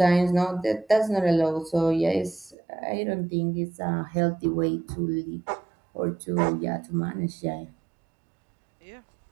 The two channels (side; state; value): left; drops out; at 2.6 s